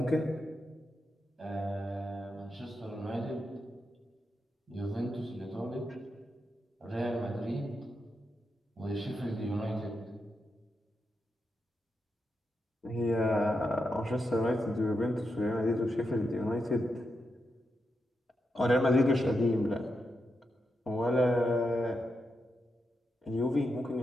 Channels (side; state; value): both; normal; correlation 0.86